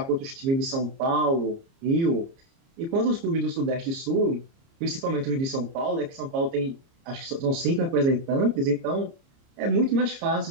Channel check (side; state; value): left; late; 30 ms